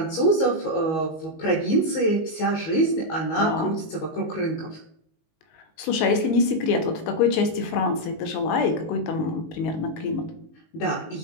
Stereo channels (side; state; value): right; late; 19 ms